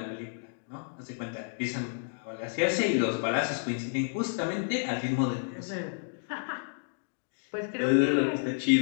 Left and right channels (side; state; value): right; silent; digital silence